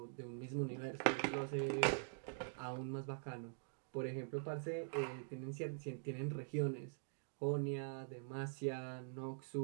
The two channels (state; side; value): silent; left; digital silence